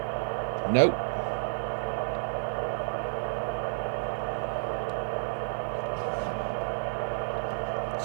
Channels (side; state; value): left; silent; digital silence